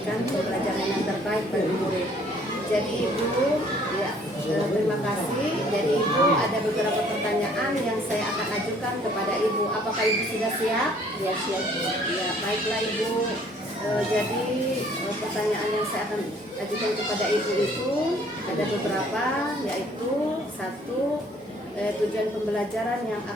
pembelajaran yang terbaik bagi murid. Jadi Ibu, ya terima kasih. Jadi Ibu ada beberapa pertanyaan yang saya akan ajukan kepada Ibu. Apakah Ibu sudah siap? Ya siap Bu. Ya baiklah Ibu. Jadi pertanyaan yang saya akan ajukan kepada Ibu itu ada beberapa, yaitu satu, tujuan pembelajaran yang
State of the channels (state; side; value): normal; both; correlation 0.59